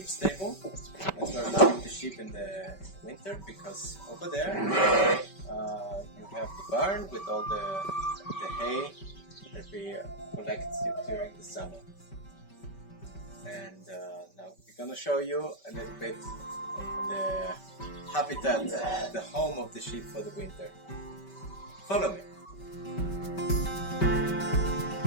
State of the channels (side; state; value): right; late; 5.2 ms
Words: stable. That's where we keep the sheep in the winter, because over there you have the barn with all the hay that we collect during the summer. And now we're gonna show you a little bit the habitat, the home of the sheep for the winter. Follow me.